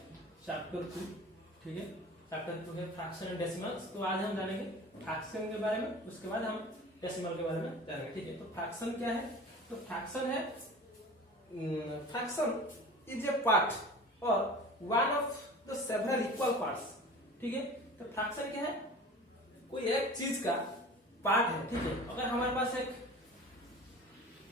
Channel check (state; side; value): normal; both; correlation 0.39